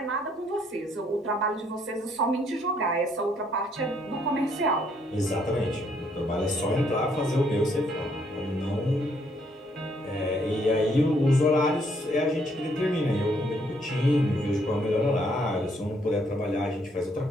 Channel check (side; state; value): both; normal; correlation 0.69